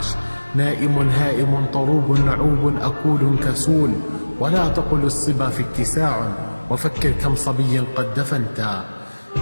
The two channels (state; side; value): inverted; both; correlation -1.00